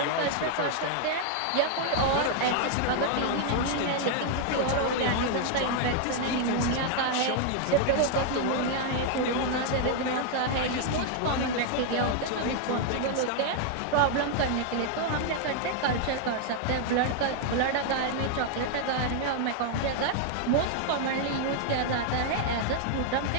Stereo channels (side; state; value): both; different; correlation 0.00